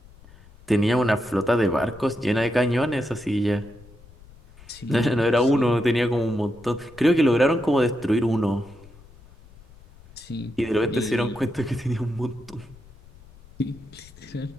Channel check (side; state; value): left; noise; rumble, 23 dB below the sound